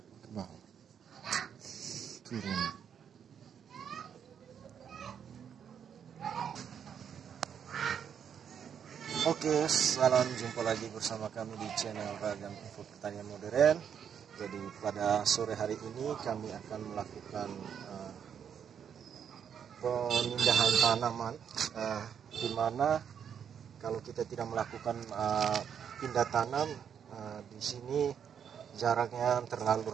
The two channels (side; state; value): left; quieter; 8.0 dB